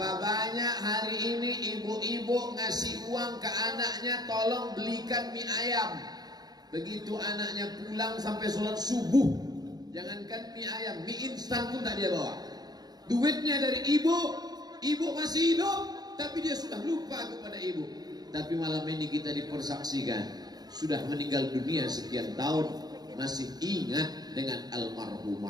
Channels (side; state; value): left; late; 0.19 ms